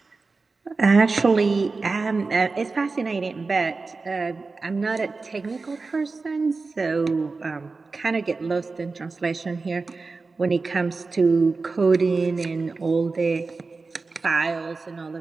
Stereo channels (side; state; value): left; quieter; 4.0 dB